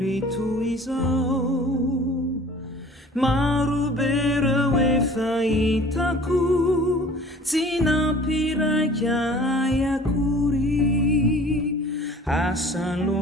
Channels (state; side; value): normal; both; correlation 0.47